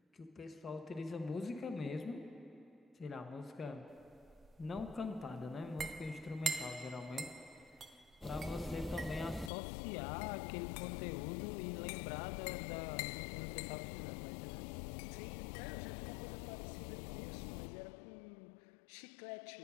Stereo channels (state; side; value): drops out; right; at 9.5 s